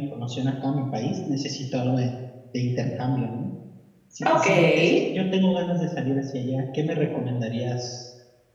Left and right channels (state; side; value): identical; both; correlation 1.00